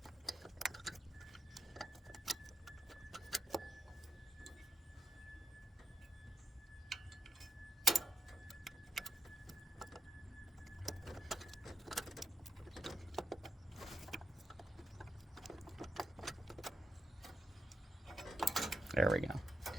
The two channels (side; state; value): both; normal; correlation 0.86